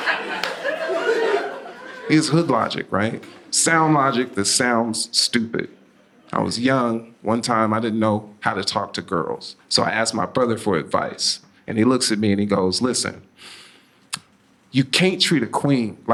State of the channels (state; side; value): identical; both; correlation 1.00